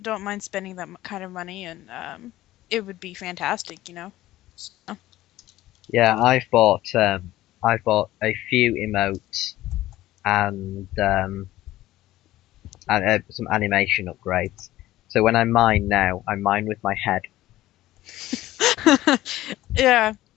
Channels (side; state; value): right; quieter; 15.6 dB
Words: don't mind spending that kind of money, and it would be fantastic. So, Yeah, I've bought a few emotes and some animation upgrades. So when I mine now, I mine with my head, yeah.